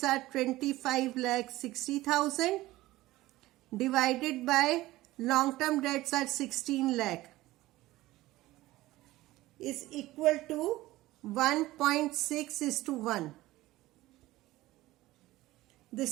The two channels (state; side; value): quieter; left; 17.4 dB